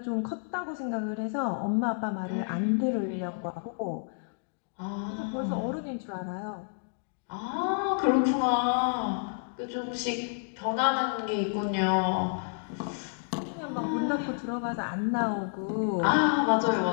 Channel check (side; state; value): right; silent; digital silence